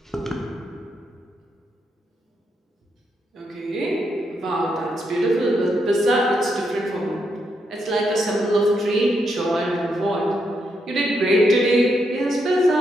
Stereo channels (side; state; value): both; normal; correlation 0.80